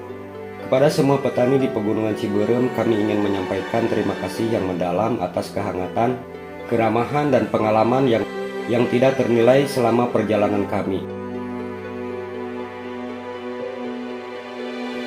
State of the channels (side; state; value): both; identical; correlation 1.00